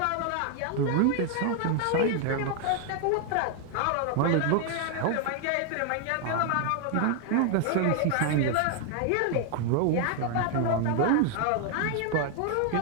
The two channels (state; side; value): different; both; correlation 0.00